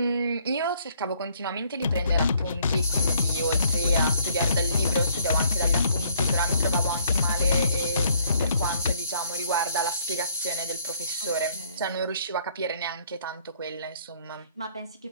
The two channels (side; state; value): both; inverted; correlation -0.63